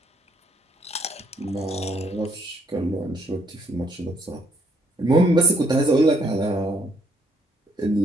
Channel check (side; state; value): both; normal; correlation 0.69